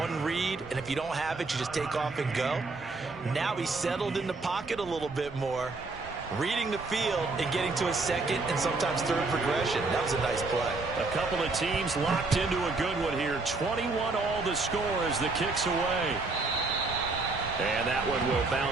read, and if you don't have it, you just take off and go. Now he's settled in the pocket a little bit more, reading the field and getting to a second and sometimes third progression. That was a nice play. A couple of teams locked into a good one here. 21 all the score as the kick's away. And that one will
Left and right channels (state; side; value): quieter; left; 3.6 dB